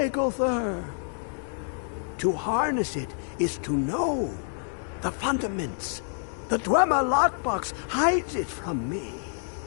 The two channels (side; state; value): right; silent; digital silence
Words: To harness it is to know the fundaments. The Dwemer lockbox hides it from me.